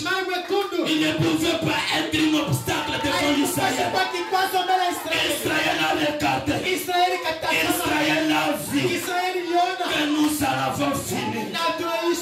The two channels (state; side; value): identical; both; correlation 1.00